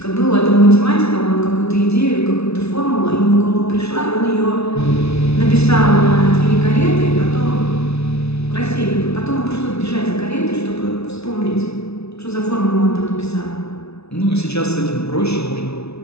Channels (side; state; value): right; late; 0.80 ms